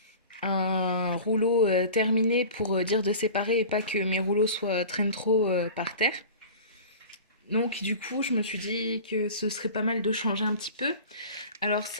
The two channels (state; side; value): inverted; both; correlation -0.38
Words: rouleau terminé pour dire de séparer et pas que mes rouleaux traînent trop par terre. Donc du coup, je me suis dit que ce serait pas mal de changer un petit peu. Alors